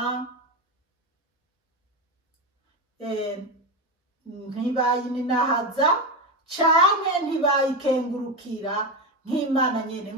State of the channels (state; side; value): normal; both; correlation 0.15